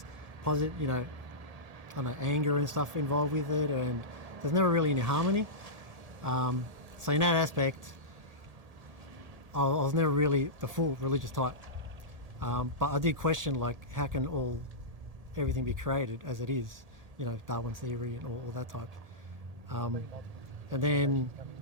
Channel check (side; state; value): left; late; 1.8 ms